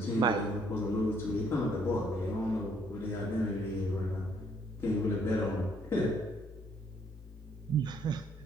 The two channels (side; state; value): both; normal; correlation 0.67